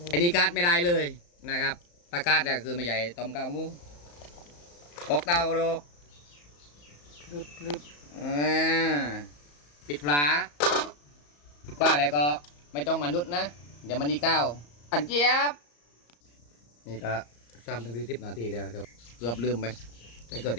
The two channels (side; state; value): right; late; 34 ms